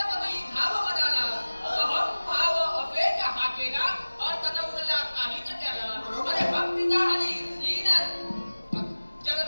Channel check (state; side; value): inverted; both; correlation -1.00